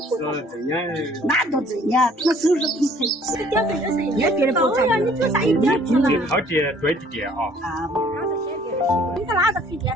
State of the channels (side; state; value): both; normal; correlation 0.58